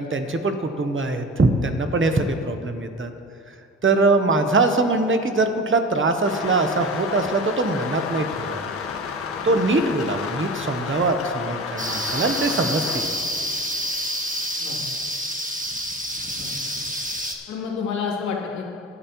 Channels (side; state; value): both; normal; correlation 0.32